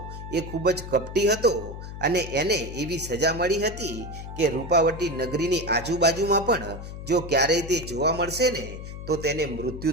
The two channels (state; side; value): noise; left; hum, 10 dB below the sound